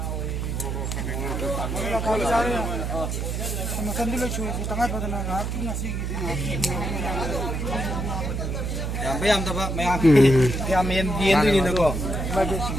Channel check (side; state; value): right; noise; hum, 2 dB below the sound